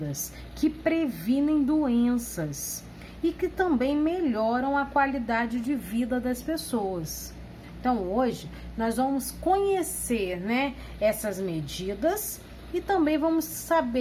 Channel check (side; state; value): both; identical; correlation 1.00